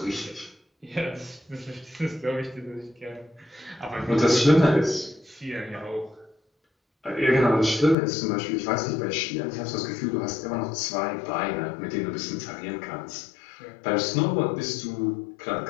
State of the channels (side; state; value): right; drops out; at 8.0 s